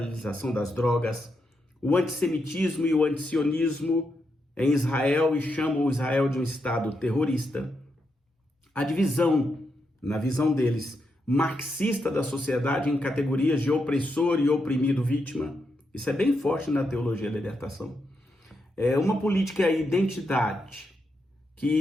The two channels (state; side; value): normal; both; correlation 0.83